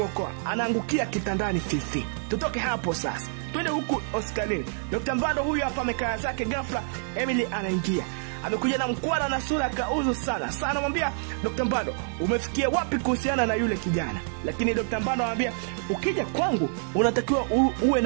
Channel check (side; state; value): left; silent; digital silence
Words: Anaangukia kitandani Fifi. Tutoke hapo sasa. Twende huku hospitalini. Dr. Mpando huyu hapa amekaa zake, ghafla Emily anaingia. Amekuja na mkwara na sura kauzu sana. Sasa anamwambia Dr. Mpando, umefikia wapi kuhusiana na yule kijana? Lakini Dr. Mpando anamwambia, ukija kwangu unatakiwa uwe